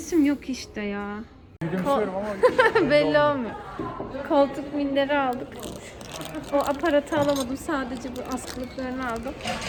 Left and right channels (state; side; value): identical; both; correlation 1.00